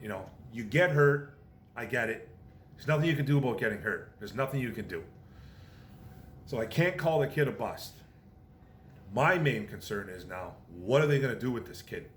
You get hurt, I get it. There's nothing you can do about getting hurt. There's nothing you can do. So I can't call the kid a bust. My main concern is now, what are they going to do with this kid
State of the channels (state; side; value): identical; both; correlation 1.00